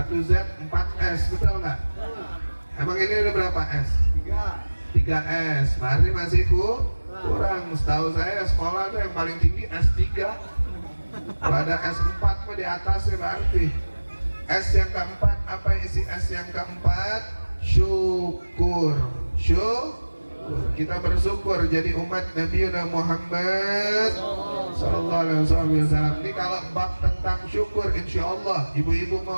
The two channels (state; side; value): inverted; both; correlation -1.00